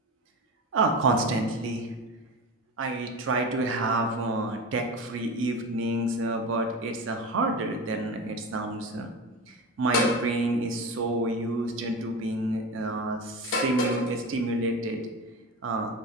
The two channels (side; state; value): both; normal; correlation 0.26